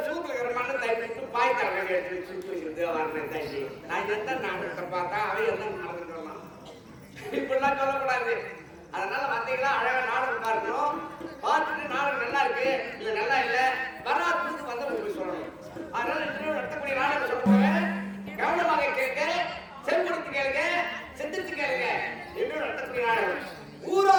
சூத்துல இருக்கிற மண்ணை தயிட்டு பாய் தரங்க எடுத்து சுற்றி வைக்கிறது வரேன் தயிட்டு. நான் எந்த நாடகத்தை பார்த்தா அவன் எந்த நடந்துக்கிறான். இப்படிலாம் சொல்லக்கூடாது. அதனால வந்தீங்களா அழகா நாடகம் பார்க்கணும். பார்த்துட்டு நாடகம் நல்லா இருக்கு இல்ல நல்லா இல்ல வராதுக்கு வந்து உங்களுக்கு சொல்லணும். அதனால இன்னும் நடத்தக்கூடிய நாடகம் சொல்லுவாங்க. கவனமாக கேட்க, செம்படுத்து கேளுங்க, செந்திருத்து கேளுங்க. இன்னும் நடத்தக்கூடிய நாடகம்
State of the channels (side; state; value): both; identical; correlation 1.00